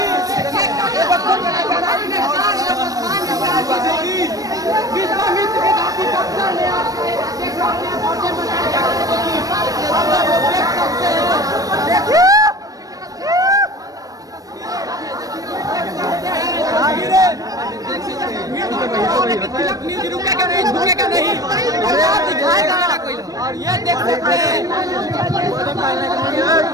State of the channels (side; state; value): left; late; 0.18 ms